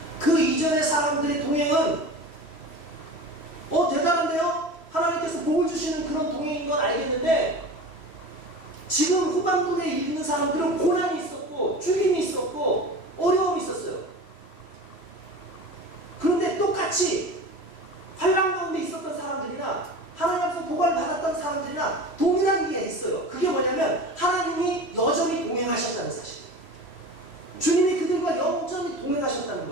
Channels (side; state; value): right; late; 3.0 ms